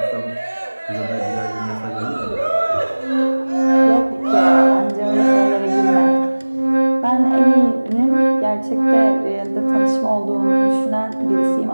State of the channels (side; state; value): both; inverted; correlation -1.00